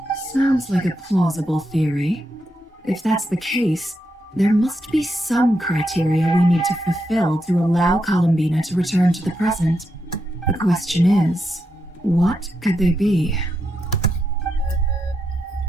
Sounds like a plausible theory. If that's the case, there must be some criteria we need to fulfill to allow Columbina to return to the present. The question is, what could they be?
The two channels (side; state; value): both; normal; correlation 0.84